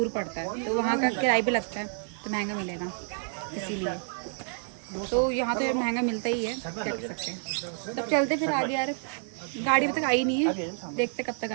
पड़ता है, तो वहाँ का किराया भी लगता है, तो महंगा मिलेगा इसीलिए। तो यहाँ तो यार महंगा मिलता ही है, क्या कर सकते हैं। तब चलते फिर आगे यार। गाड़ी अभी तक आई नहीं है, देखते कब तक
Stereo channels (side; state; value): left; silent; 59 dB below the other